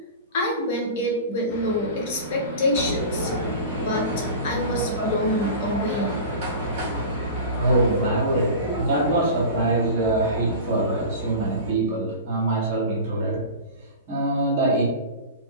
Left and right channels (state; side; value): inverted; both; correlation -0.33